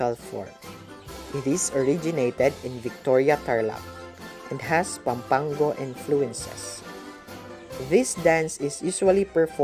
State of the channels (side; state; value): both; identical; correlation 1.00